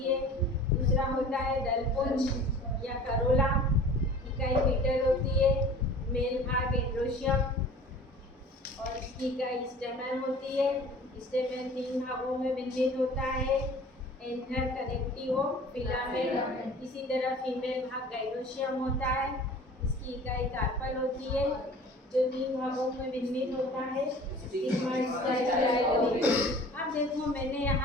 है। दूसरा होता है दलपुंज या करोला, इकाई पीटल होती है। मेल भाग एंड्रोशियम और इसकी इकाई स्टेमन होती है। स्टेमन 3 भागों में विन्यास होता है, एंथर, कनेक्टिव, फिलामेंट। इसी तरह फीमेल भाग गाइनोशियम होता है, इसकी इकाई कार्पल होती है, जो 3 भागों में विन्यास होता है, स्टिग्मा, स्टाइल। अब देखो मैंने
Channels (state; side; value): normal; both; correlation 0.44